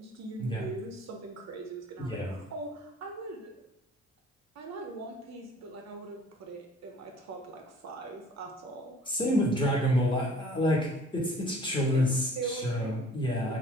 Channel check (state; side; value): normal; both; correlation 0.52